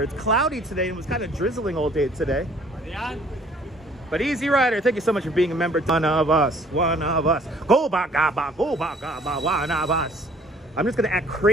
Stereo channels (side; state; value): both; normal; correlation 0.57